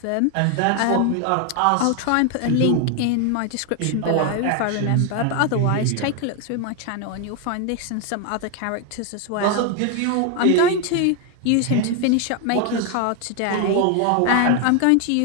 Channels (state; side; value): different; both; correlation 0.01